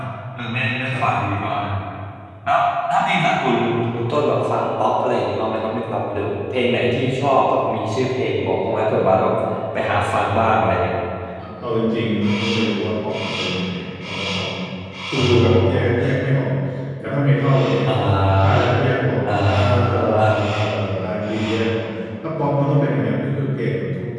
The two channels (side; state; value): both; identical; correlation 1.00